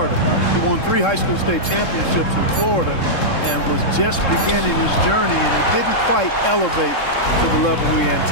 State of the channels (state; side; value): late; right; 3.7 ms